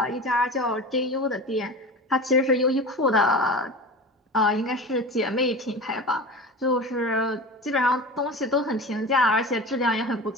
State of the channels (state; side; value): normal; both; correlation 0.31